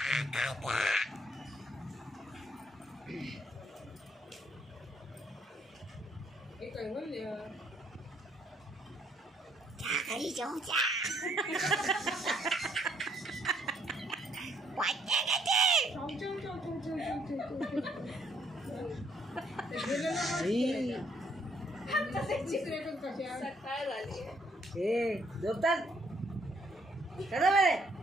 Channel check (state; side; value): normal; both; correlation 0.69